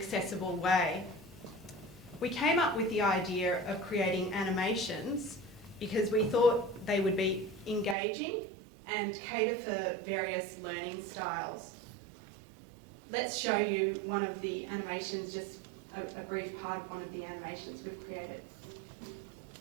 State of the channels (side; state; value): left; drops out; at 8.0 s